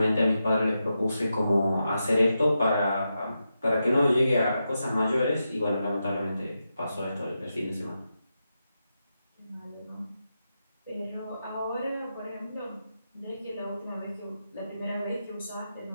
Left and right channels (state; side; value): inverted; both; correlation -0.88